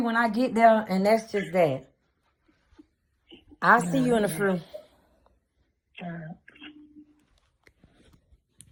when I get there. And that's just that. I'll see you in the fruit.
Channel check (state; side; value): identical; both; correlation 1.00